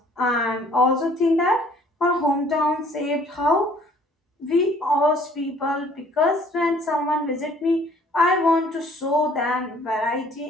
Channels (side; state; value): both; normal; correlation 0.57